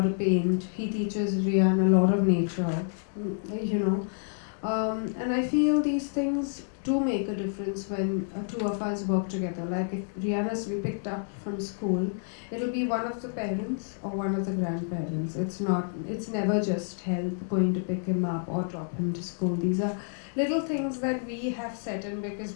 paint. He teaches Rian a lot of nature, And I feel these things do make a difference when two of us work together. Like if Rihanna's to be picked up from school, it'll be one of the parents or one of the grandparents. It's never just help going to pick him up or drop him to school. These are little things that we have set in because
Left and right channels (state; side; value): silent; right; digital silence